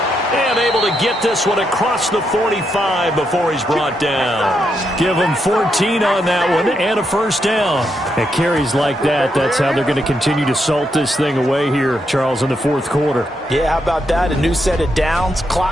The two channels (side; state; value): both; normal; correlation 0.81